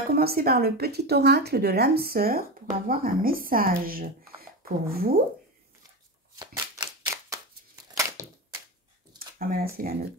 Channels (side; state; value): both; normal; correlation 0.21